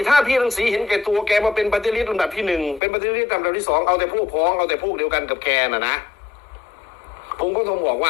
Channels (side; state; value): right; drops out; at 2.8 s